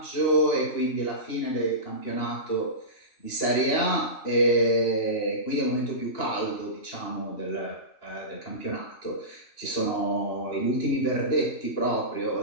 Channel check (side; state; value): right; late; 2.9 ms